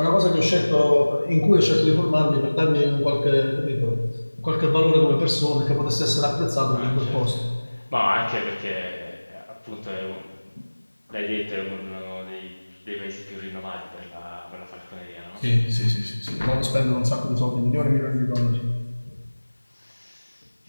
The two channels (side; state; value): both; inverted; correlation -1.00